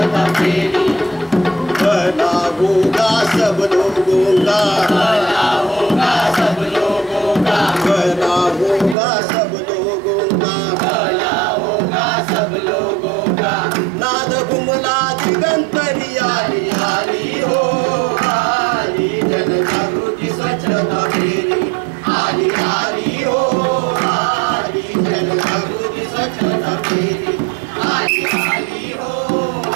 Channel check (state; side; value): drops out; left; at 9.0 s